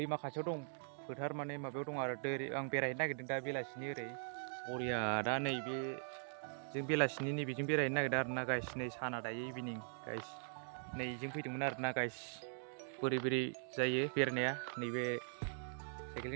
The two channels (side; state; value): left; silent; digital silence